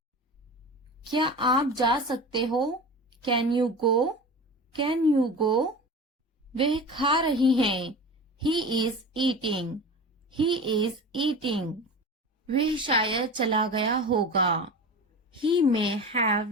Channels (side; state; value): both; normal; correlation 0.32